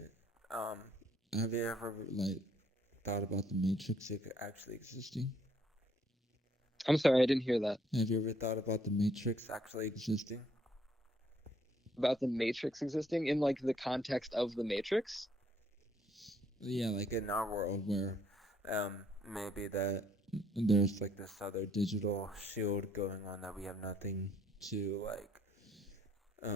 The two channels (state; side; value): normal; both; correlation 0.66